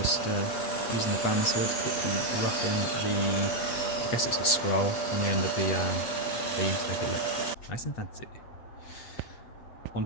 just using the bandsaw to quickly rough in the, I guess it's a scroll on the end of the beam to make it look nice and fancy.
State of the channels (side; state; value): right; late; 8.2 ms